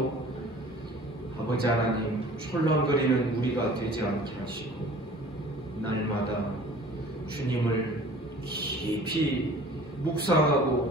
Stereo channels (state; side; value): normal; both; correlation 0.47